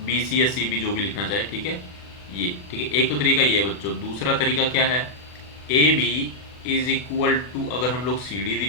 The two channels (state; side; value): late; right; 40 ms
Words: BC या CB जो भी लिखना चाहे। ठीक है, ये ठीक है, एक तो तरीका ये है बच्चों। दूसरा तरीका क्या है, AB इज इक्वल टू, अगर हम लोग CD